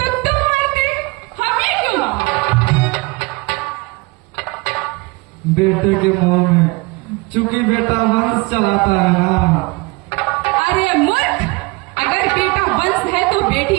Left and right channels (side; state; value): left; quieter; 25.9 dB